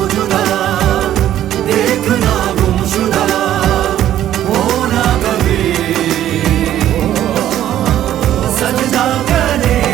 जुदा, देखना गुमशुदा हो ना कभी, सजदा करे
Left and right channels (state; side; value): quieter; left; 12.0 dB